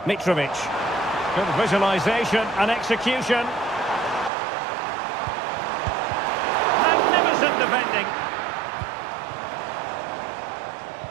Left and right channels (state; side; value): drops out; left; at 4.3 s